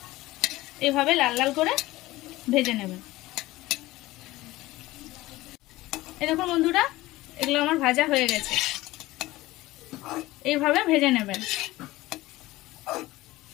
এইভাবে লাল লাল করে ভেজে নেবেন। এই দেখুন বন্ধুরা, এগুলো আমার ভাজা হয়ে গেছে। এইভাবে ভেজে নেবেন।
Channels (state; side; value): quieter; right; 18.2 dB